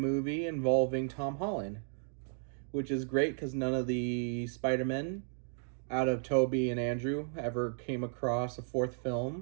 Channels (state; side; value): silent; left; digital silence